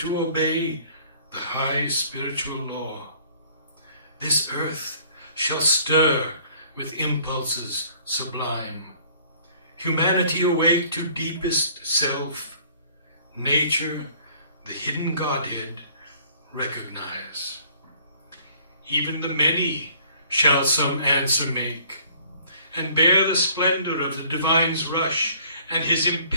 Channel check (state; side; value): inverted; both; correlation -0.56